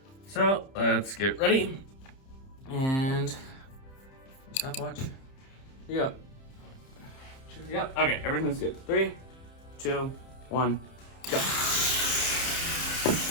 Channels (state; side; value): late; right; 30 ms